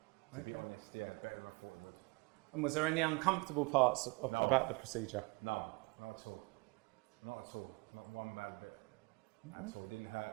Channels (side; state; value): left; quieter; 27.8 dB